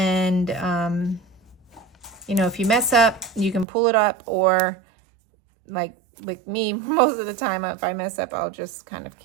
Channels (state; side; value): drops out; left; at 3.7 s